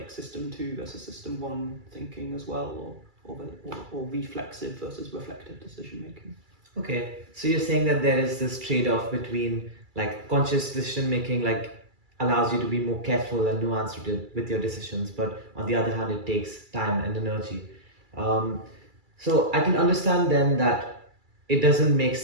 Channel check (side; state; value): left; late; 2.3 ms